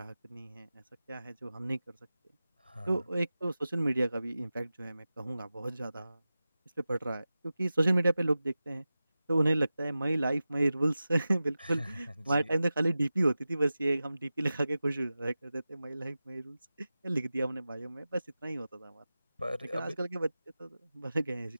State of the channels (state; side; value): inverted; both; correlation -0.94